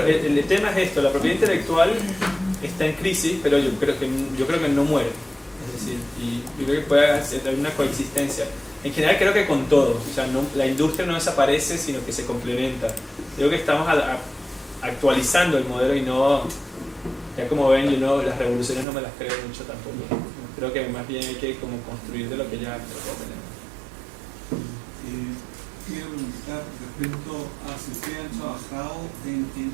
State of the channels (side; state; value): left; drops out; at 18.9 s